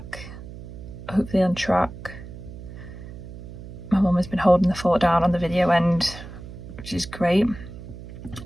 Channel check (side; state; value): right; noise; hum, 13 dB below the sound